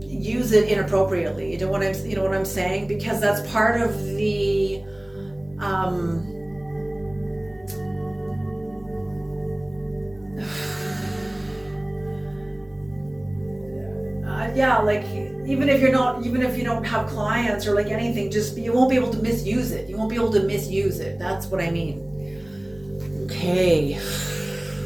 it inappropriately. You know what I'm saying? Because that's part of the like even if you don't have clients or like anything, just you won't be able to misuse it. You won't be able to misuse it. That's what I mean. Okay.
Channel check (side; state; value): left; noise; hum, 26 dB below the sound